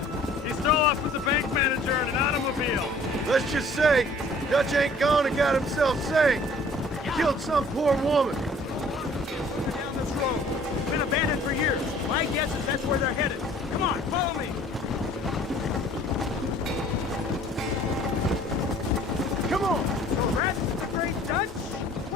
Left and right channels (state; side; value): normal; both; correlation 0.53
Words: He stole off with the bank manager in an automobile. Let's just say, Dutch ain't gone and got himself saved. He killed some poor woman. Down this road. It's been abandoned for years. My guess is that's where they're headed. Come on, follow me. Come on! So that's the great Dutch?